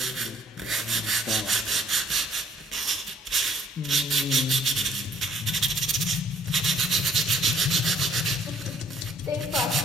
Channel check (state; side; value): normal; both; correlation 0.61